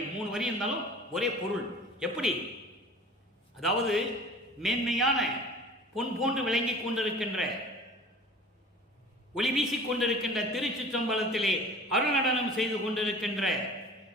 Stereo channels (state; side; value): normal; both; correlation 0.43